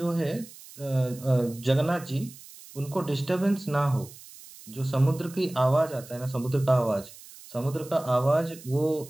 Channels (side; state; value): right; noise; hiss, 19 dB below the sound